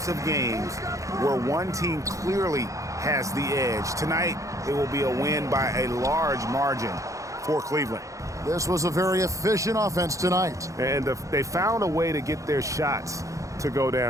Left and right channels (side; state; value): left; late; 0.15 ms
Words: of games where one team clearly has the edge. Tonight, it will be a win by a large margin for Cleveland. This was a very efficient offense tonight. And they found a way to get their shots to go